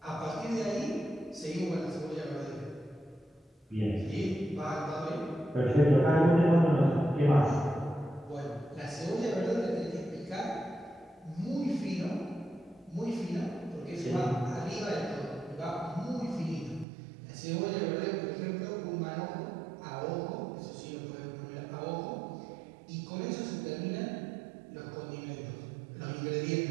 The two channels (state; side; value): drops out; left; at 16.9 s